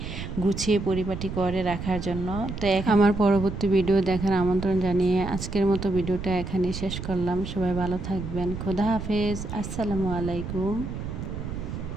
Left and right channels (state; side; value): noise; right; rumble, 7 dB below the sound